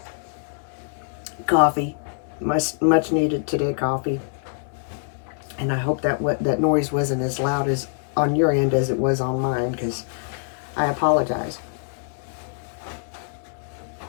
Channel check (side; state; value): right; silent; 60 dB below the other